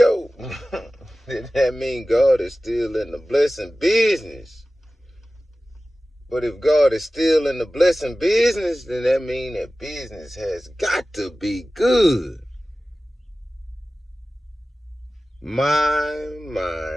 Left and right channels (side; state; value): both; normal; correlation 0.96